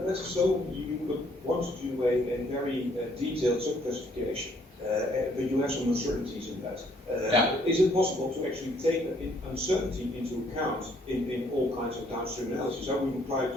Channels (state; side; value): normal; both; correlation 0.66